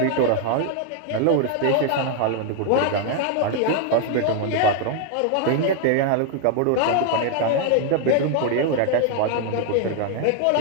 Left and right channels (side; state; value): both; different; correlation 0.00